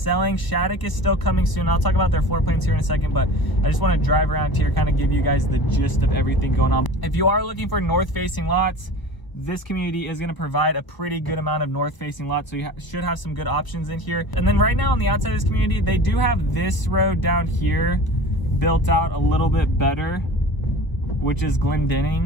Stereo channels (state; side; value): late; right; 1.0 ms